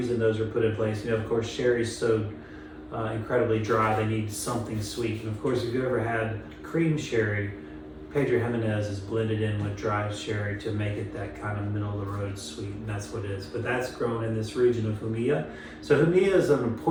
those are put in place. Of course, sherry's so incredibly dry, they need something sweet. And of course, if you ever had cream sherry, Pedro Jimenez is blended in with dry sherry to make it that kind of middle of the road sweet, and that's what it is. But that's grown in this region of Jumilla. So Jumilla is an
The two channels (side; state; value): both; identical; correlation 1.00